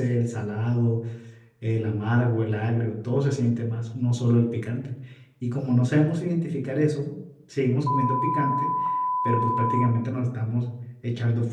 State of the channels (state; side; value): identical; both; correlation 1.00